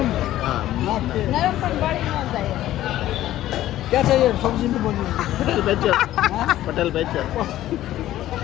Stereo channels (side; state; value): right; quieter; 13.9 dB